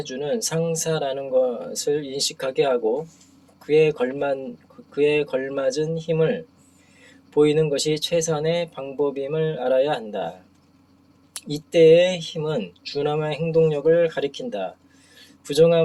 상사라는 것을 인식하게 하고 그에 걸맞은 힘을 보이는 것이 최선의 방법임을 알아야 한다. 이때의 힘은 준엄한 행동력을 가리킨다.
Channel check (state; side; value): identical; both; correlation 1.00